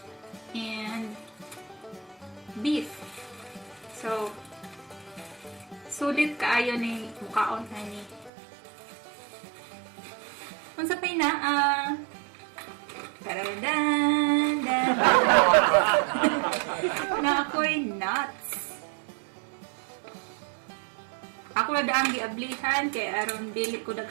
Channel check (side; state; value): left; drops out; at 8.3 s